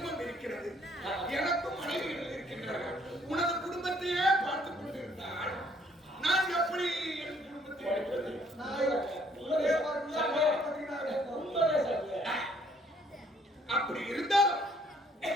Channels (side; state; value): both; normal; correlation 0.64